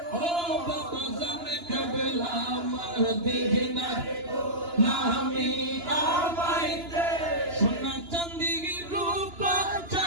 ও বাবা জানে কেবলা মদিনার গোলামি আমায় দে। সোনা চাঁদি রূপা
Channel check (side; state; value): left; late; 2.9 ms